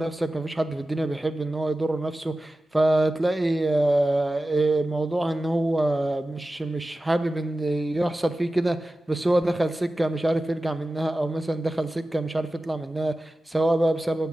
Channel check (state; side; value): normal; both; correlation 0.95